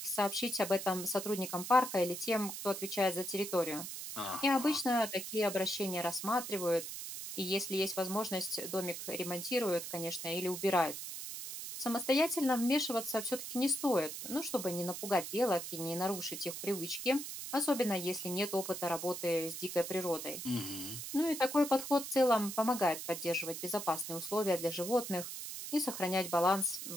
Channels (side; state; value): right; noise; hiss, 7 dB below the sound